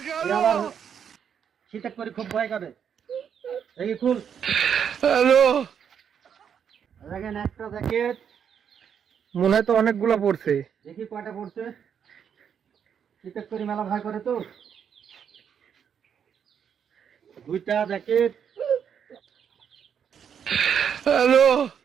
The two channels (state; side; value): quieter; left; 7.9 dB